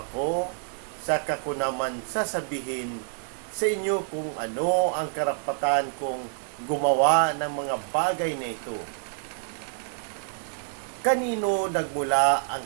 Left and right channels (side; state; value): left; silent; digital silence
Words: saka ko naman sasabihin sa inyo kung ano ang karapatan kong gumawa ng mga bagay na ito. Kanino nagmula ang